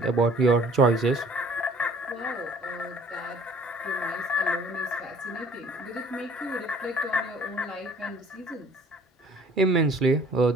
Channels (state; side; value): normal; both; correlation 0.54